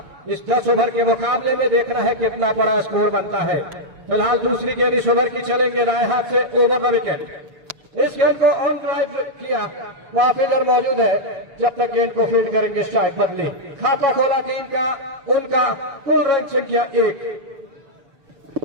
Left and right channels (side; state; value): left; late; 6.8 ms